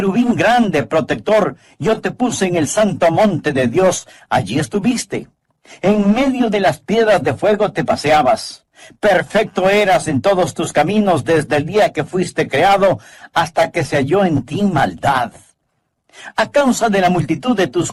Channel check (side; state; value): both; identical; correlation 1.00